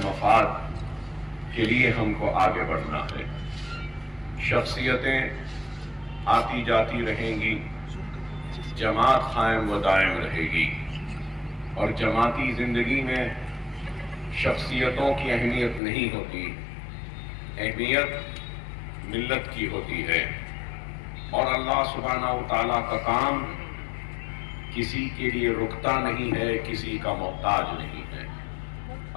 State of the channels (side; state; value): right; drops out; at 15.8 s